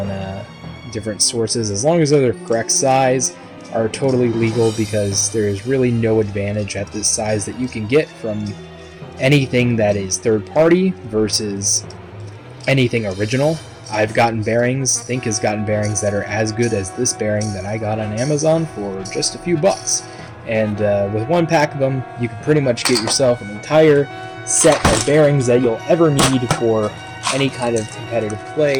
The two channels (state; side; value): identical; both; correlation 1.00